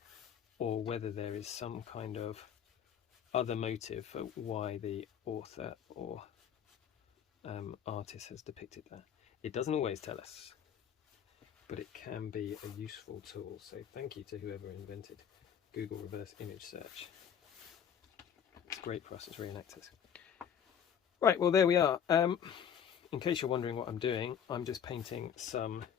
or whether there is some kind of other motive for why the author or artist has depicted that. It doesn't always tell us, but it can be a useful tool. So thank you to whoever invented Google reverse image search. It's great for us as reenactors. Right, well there we are. In case you're wondering what I'm doing, I'm just painting some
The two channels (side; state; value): right; quieter; 8.3 dB